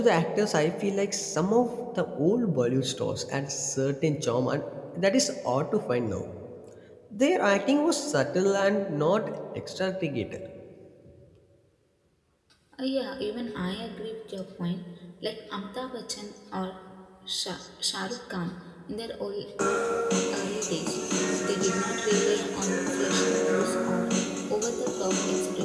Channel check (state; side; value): identical; both; correlation 1.00